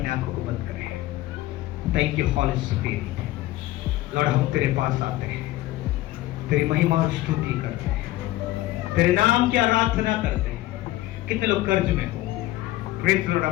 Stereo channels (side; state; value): right; quieter; 16.5 dB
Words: आंखों को बंद करें। Thank you holy spirit. Lord, हम तेरे पास आते हैं, तेरी महिमा और स्तुति करते हैं, तेरे नाम की आराधना करते हैं। कितने लोग कर्ज में हो? Praise Lord.